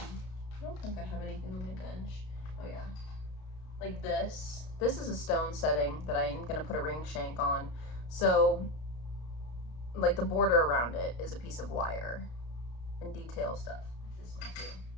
don't think I have anything on my bench. Oh yeah. Like this. This is a stone setting that I'm gonna put a ring shank on. So, like the border around it is a piece of wire and detail stuff. This one too.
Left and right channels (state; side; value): late; right; 33 ms